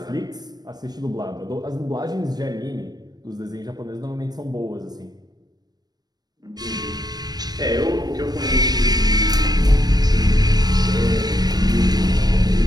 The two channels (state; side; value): late; left; 0.19 ms